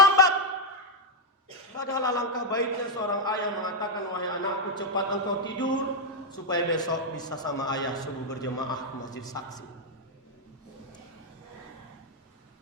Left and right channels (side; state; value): both; normal; correlation -0.01